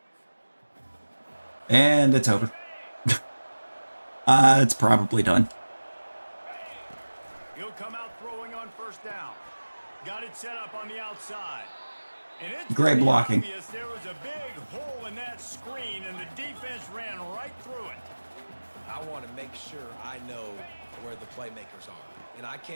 And it's over. It's probably done. He'll come out throwing on 1st down. Got it set up on the outside. And it's Great pretty blocking. obvious there was a big hole in that screen, and the defense ran right through it. I want to make sure I know where the playmakers are. And I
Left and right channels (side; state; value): both; inverted; correlation -1.00